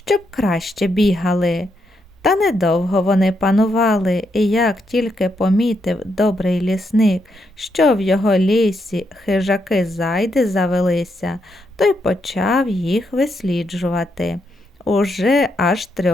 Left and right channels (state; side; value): normal; both; correlation 0.80